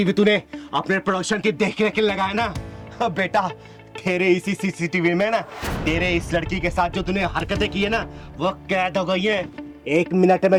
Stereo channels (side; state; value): both; identical; correlation 1.00